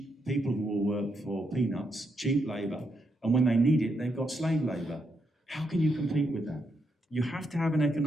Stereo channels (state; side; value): normal; both; correlation 0.80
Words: people who will work for peanuts, cheap labour, and when they need it, they've got slave labour? How can you compete with that? You have to have an